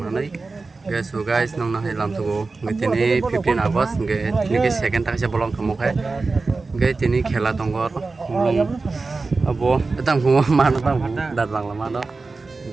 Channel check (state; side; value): quieter; left; 3.9 dB